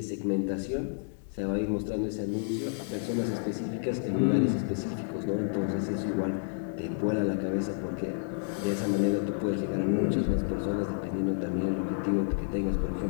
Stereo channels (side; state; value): right; silent; digital silence